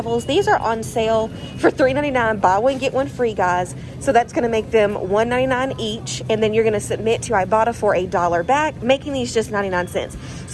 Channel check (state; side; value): identical; both; correlation 1.00